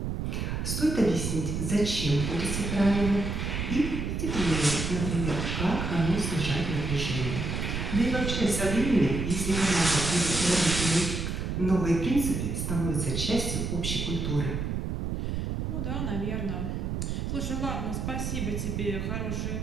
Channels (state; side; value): noise; right; rumble, 2 dB below the sound